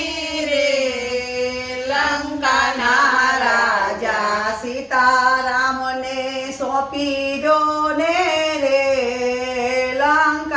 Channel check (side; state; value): both; identical; correlation 1.00